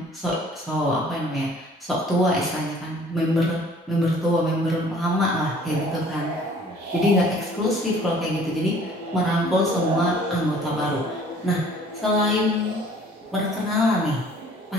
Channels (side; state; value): both; normal; correlation 0.53